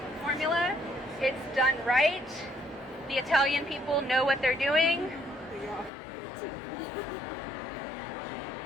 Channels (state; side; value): drops out; right; at 5.9 s